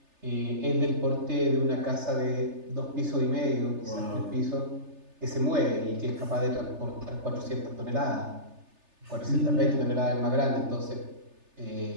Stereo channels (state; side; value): late; left; 3.3 ms